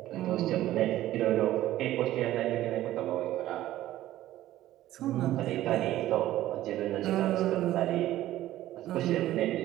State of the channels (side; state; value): left; quieter; 14.3 dB